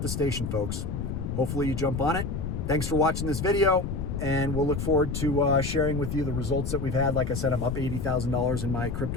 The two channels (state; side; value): noise; left; rumble, 4 dB below the sound